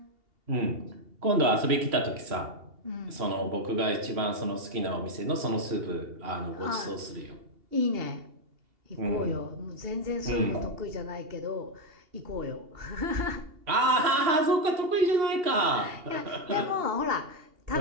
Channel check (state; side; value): late; left; 2.8 ms